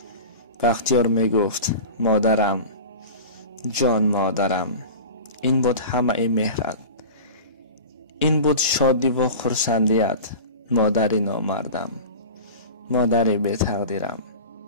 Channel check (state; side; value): inverted; both; correlation -0.33